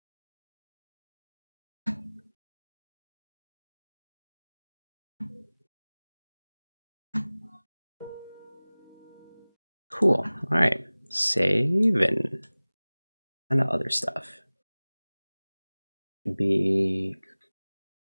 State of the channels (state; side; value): inverted; both; correlation -1.00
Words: Cool. All right. Save and other stuff.